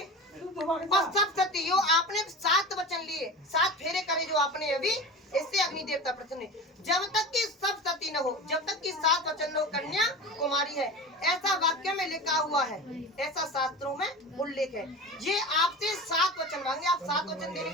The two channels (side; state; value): both; normal; correlation 0.31